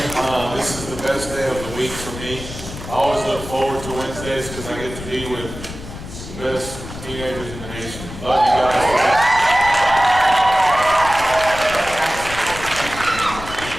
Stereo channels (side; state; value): left; noise; rumble, 11 dB below the sound